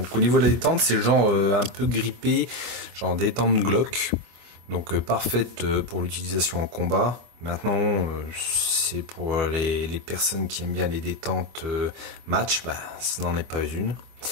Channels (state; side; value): late; left; 25 ms